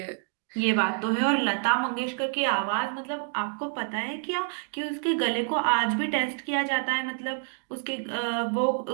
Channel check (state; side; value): silent; left; 59 dB below the other